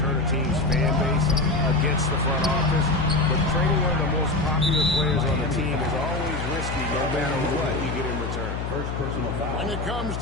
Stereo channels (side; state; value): left; noise; hum, 5 dB below the sound